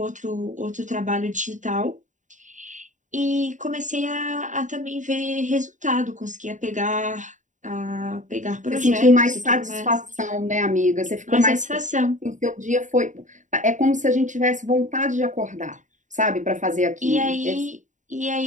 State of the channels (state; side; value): late; left; 0.36 ms